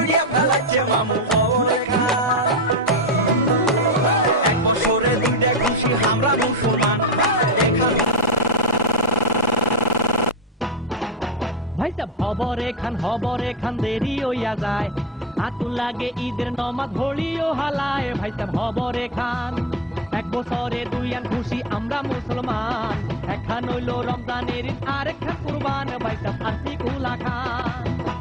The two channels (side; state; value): both; normal; correlation 0.21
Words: ফেলাচ্ছে মামু খবর এখান এক বছরে দুইটা খুশি আমরা মুসলমান ভাই সাহেব খবর এখান দেরি হইয়া যায় আতুল লাগে ঈদের নমাজ ভরিও হালায় ভাই সাহেব খবর এখান এক বছরে দুইয়ান খুশি আমরা মুসলমান একখান হইল রমজানের ঈদ আর একখান কুরবান ভাই সাহেব আসি কুলা খান